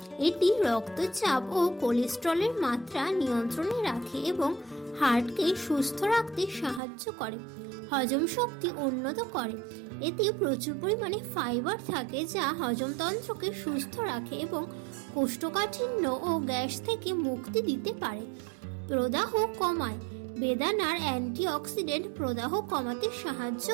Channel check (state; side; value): drops out; left; at 6.8 s